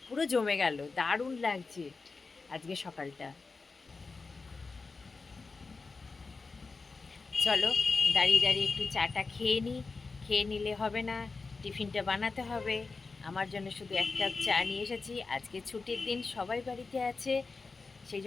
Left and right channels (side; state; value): right; quieter; 4.2 dB